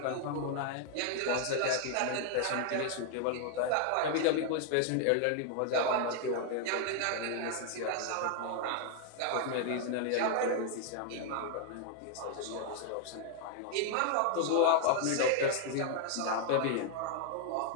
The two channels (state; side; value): different; both; correlation 0.00